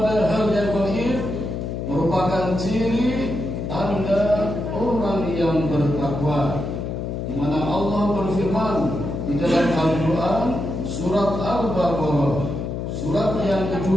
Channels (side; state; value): left; noise; hum, 4 dB below the sound